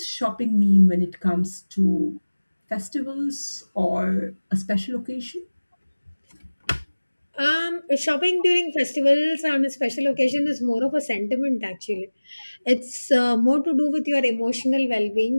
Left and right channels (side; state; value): both; inverted; correlation -1.00